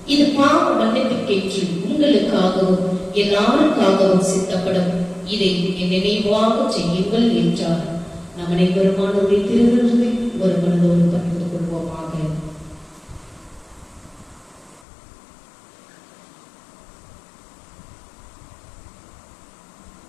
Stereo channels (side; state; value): right; drops out; at 14.9 s